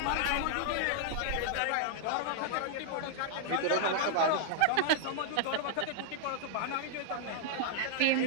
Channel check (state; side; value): different; both; correlation 0.00